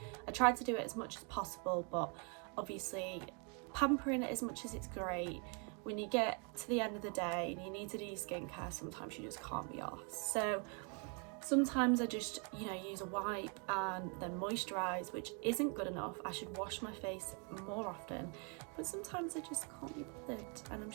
I try to do it as much as possible, but obviously pampering it as much as it's great, when you get to the end of the day and you need to do your skincare, sometimes you just can't be arsed. So sometimes I just, use a wipe and then moisturise, which isn't good enough. I should wash my face more often, but sometimes I just can't be bothered, and I'm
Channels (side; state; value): left; quieter; 37.1 dB